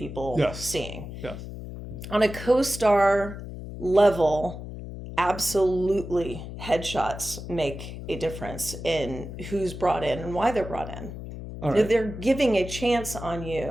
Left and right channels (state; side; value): noise; left; hum, 10 dB below the sound